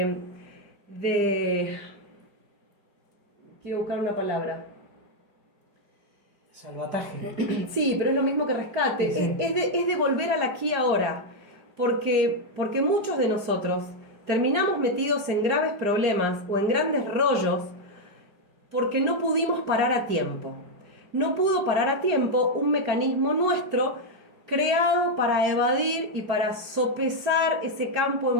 Quiero buscar una palabra. Salvataje. Sí, pero es lo mismo que rescate. Sí. Es de volver al aquí y ahora. Porque muchos de nosotros terminamos metidos en graves problemas o en grandes rollos porque no pudimos parar a tiempo. No pudo parar a tiempo un mecanismo nuestro creado para evadir y para sopesar ese campo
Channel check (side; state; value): left; late; 4.9 ms